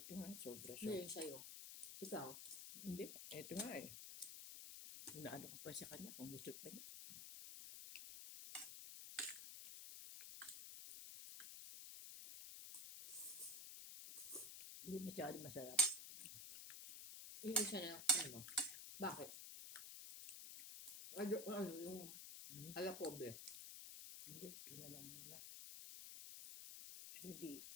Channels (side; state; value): left; noise; hiss, 7 dB below the sound